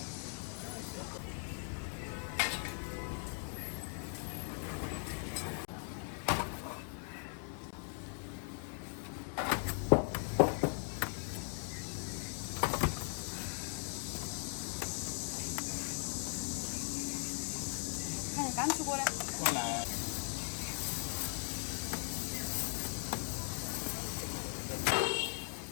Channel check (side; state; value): right; silent; 52 dB below the other